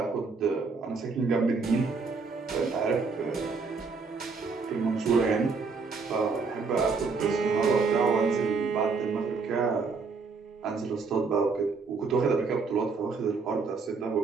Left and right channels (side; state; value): left; quieter; 4.6 dB